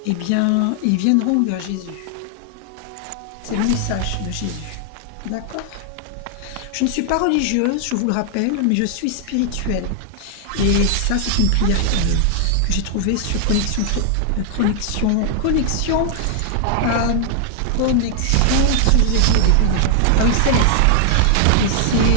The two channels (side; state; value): both; different; correlation 0.00